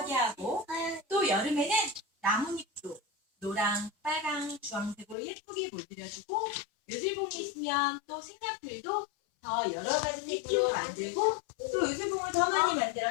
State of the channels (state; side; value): drops out; right; at 5.2 s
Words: 하고 또 여름에는 나뭇잎도 노랑, 빨강, 주황색으로 예쁘게 물들여주고 요술봉이 있으면 또 색약들도 더 여러 가지 색으로 만들고 또 요술봉을 더 많이